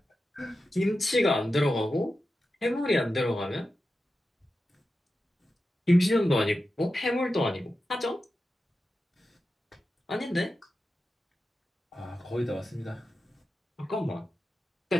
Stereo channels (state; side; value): normal; both; correlation 0.92